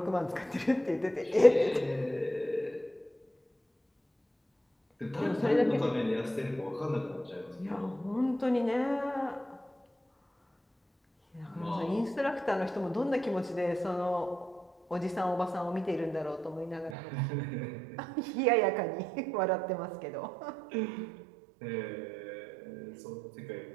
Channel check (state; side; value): drops out; left; at 16.9 s